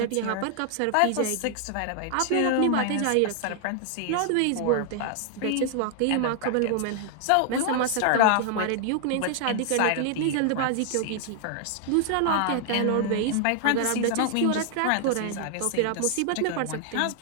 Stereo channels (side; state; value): both; different; correlation 0.00